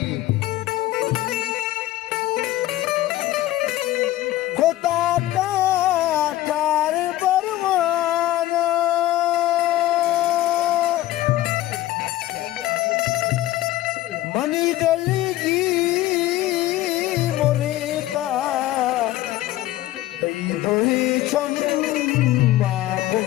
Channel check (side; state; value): right; quieter; 15.3 dB